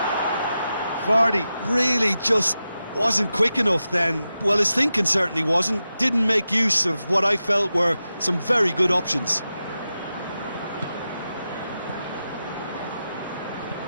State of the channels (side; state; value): both; inverted; correlation -0.91